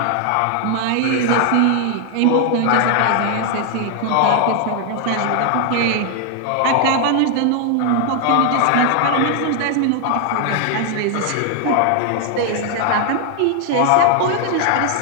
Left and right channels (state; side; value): different; both; correlation 0.00